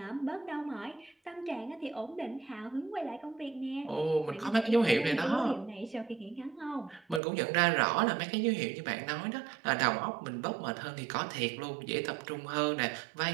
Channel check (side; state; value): left; drops out; at 7.2 s